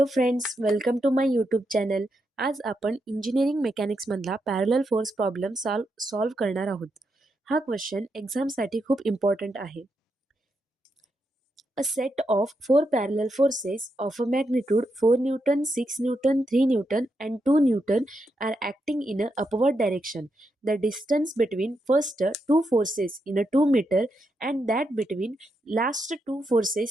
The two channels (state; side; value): normal; both; correlation 0.83